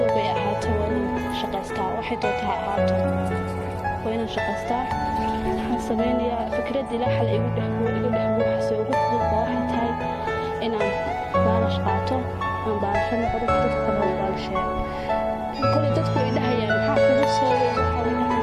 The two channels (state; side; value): identical; both; correlation 1.00